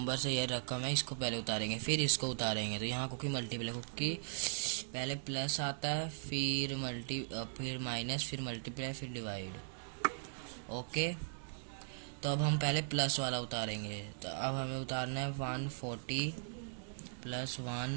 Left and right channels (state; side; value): silent; left; digital silence